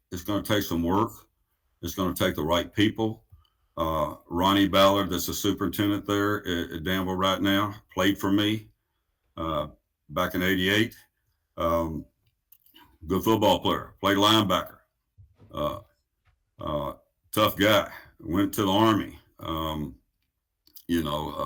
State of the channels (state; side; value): identical; both; correlation 1.00